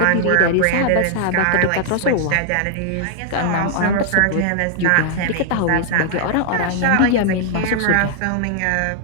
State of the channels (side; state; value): both; different; correlation 0.00